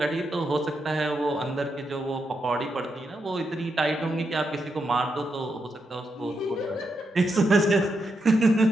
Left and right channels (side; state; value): both; normal; correlation 0.83